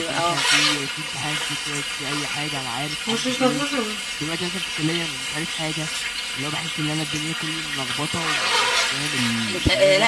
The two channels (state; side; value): identical; both; correlation 1.00